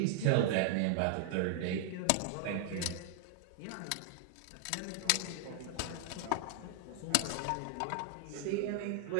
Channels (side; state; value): both; different; correlation 0.00